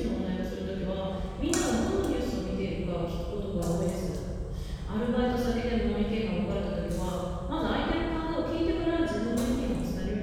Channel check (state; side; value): identical; both; correlation 1.00